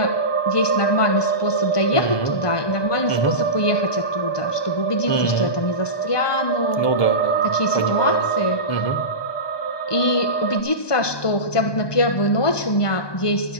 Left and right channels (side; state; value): right; late; 1.2 ms